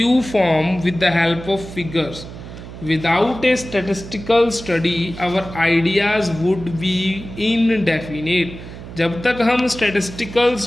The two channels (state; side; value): noise; right; hum, 13 dB below the sound